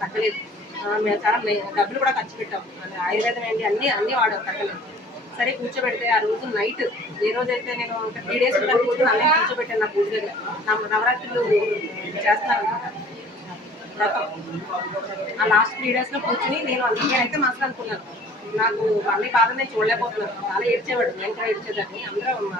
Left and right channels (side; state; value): both; normal; correlation 0.50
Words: తగ్గలేదు. మేము చాలా డబ్బులు కూడా ఖర్చు పెట్టాం, ఆయుర్వేదం ఏంటి అన్నీ వాడాం, తగ్గలేదు. సరే కూర్చోబెడితే ఆ రోజు నైట్, ఏ రోజైతే నేను 3 days కూర్చొని అన్నీ కూర్చోబెట్టాను నా పూజ దగ్గర. నవరాత్రులు చేస్తాను ఆ లాస్ట్ 3 days లో కూర్చుని నేనైతే మస్తు అనుకున్నాను. నాకు అన్ని బాధ నేను చూడలేకపోతున్నాను. చాలా ఏడ్చేవాడు, నేను కూడా ఏడ్చేదాన్ని. అందరూ